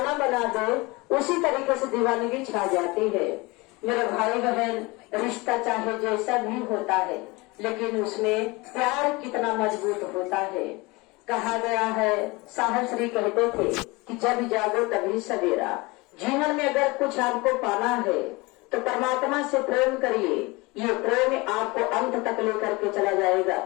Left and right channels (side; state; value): right; quieter; 24.2 dB